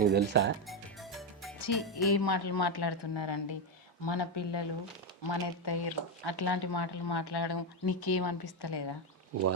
తెలుసా? ఏ మాటలు మాట్లాడుతున్నారండి? మన పిల్లలు మన ఎత్తయ్యరు అట్లాంటి మాటలు మాట్లాడడం నీకేమనిపిస్తలేదా?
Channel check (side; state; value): both; normal; correlation 0.07